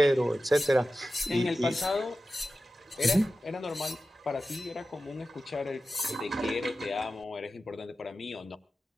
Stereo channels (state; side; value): normal; both; correlation 0.93